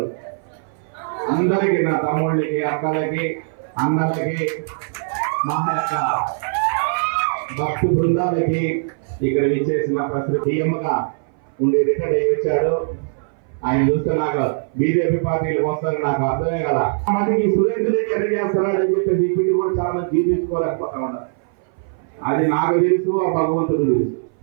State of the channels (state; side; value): silent; left; 60 dB below the other